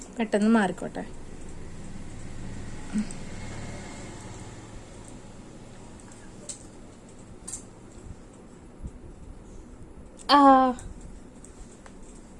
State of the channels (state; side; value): identical; both; correlation 1.00